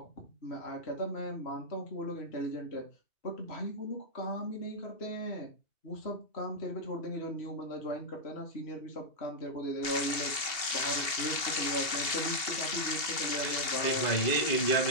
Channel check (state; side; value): late; right; 2.7 ms